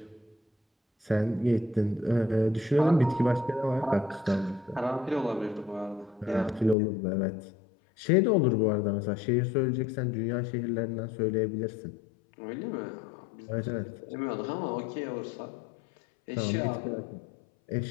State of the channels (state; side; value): drops out; right; at 6.8 s